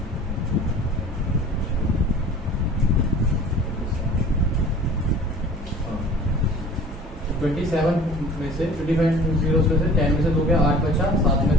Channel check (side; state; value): both; normal; correlation 0.46